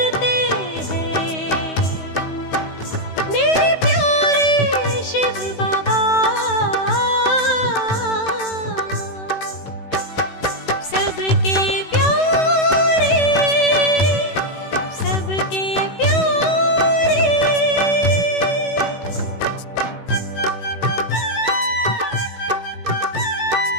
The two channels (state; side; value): late; right; 16 ms